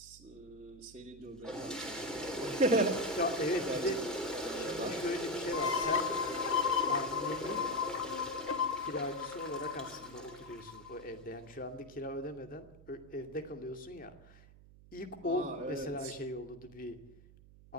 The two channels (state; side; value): noise; right; hum, 21 dB below the sound